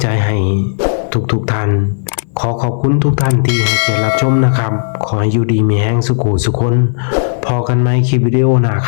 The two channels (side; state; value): right; silent; digital silence